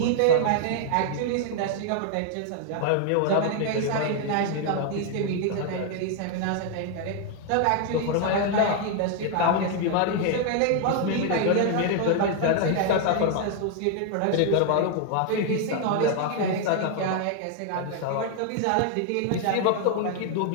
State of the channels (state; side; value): different; both; correlation 0.00